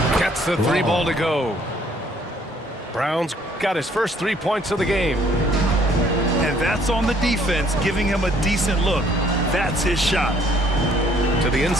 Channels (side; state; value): both; normal; correlation 0.62